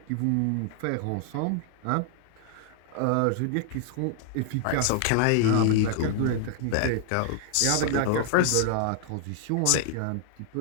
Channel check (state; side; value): different; both; correlation 0.00